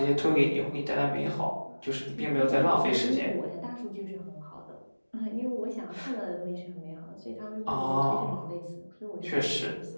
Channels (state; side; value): inverted; both; correlation -1.00